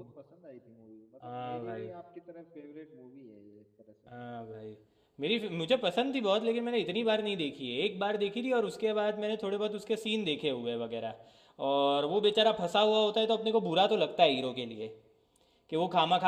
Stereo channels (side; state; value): both; identical; correlation 1.00